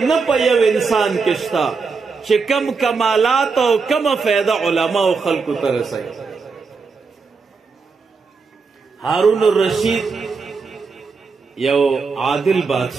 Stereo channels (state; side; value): quieter; left; 4.8 dB